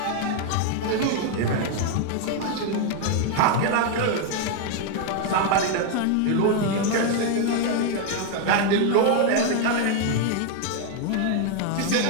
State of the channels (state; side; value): different; both; correlation 0.01